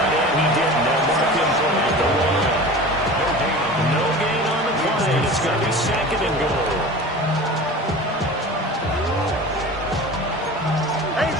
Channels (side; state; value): both; normal; correlation 0.36